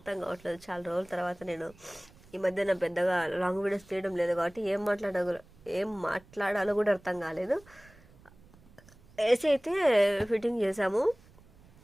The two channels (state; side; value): noise; right; rumble, 26 dB below the sound